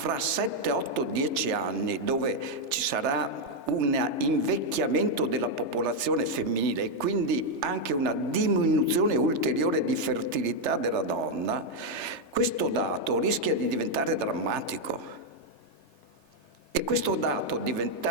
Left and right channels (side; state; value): left; late; 3.3 ms